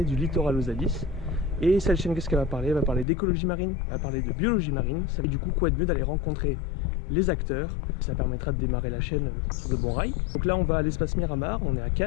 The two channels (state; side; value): drops out; right; at 3.1 s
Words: du littoral aux abysses. Et cette chaîne, qu'est-ce qu'elle va parler? Elle va parler d'écologie marine, elle va parler de biologie marine. Ça fait du coup quoi de mieux d'aller rencontrer les acteurs. Ça permettra de démarrer la chaîne sur de bons rails. Donc là on va à l'espace Miramar, on est à